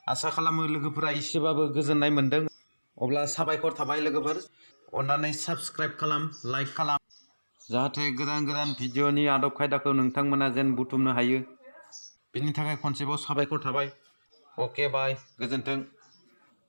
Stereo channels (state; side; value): inverted; both; correlation -1.00